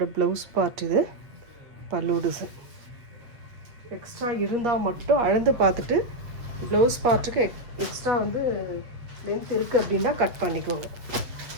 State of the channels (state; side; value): late; left; 7.9 ms